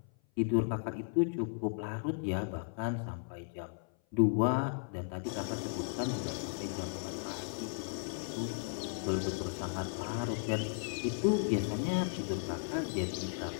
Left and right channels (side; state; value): right; silent; 54 dB below the other